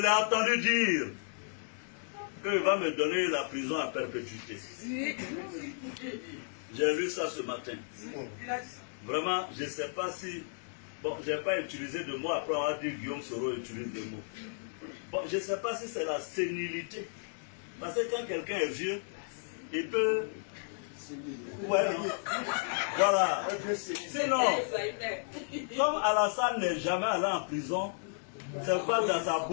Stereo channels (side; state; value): right; silent; digital silence